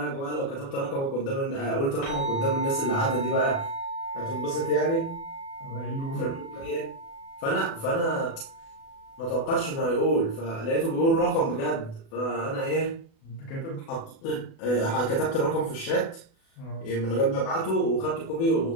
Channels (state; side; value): late; right; 36 ms